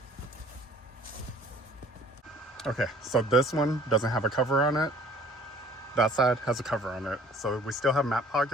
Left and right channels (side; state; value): both; normal; correlation 0.53